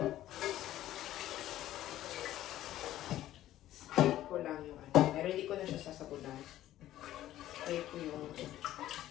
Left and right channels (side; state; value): right; quieter; 13.6 dB